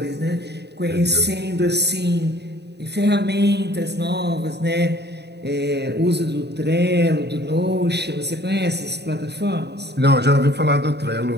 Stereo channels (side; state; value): left; late; 0.49 ms